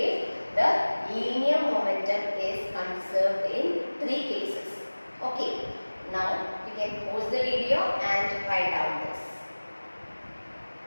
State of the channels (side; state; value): both; inverted; correlation -1.00